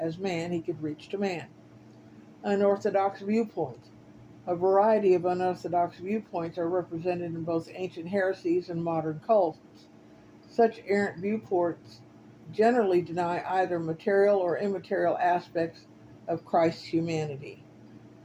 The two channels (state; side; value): identical; both; correlation 1.00